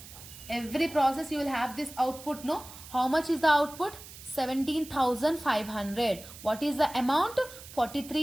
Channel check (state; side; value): noise; right; hiss, 16 dB below the sound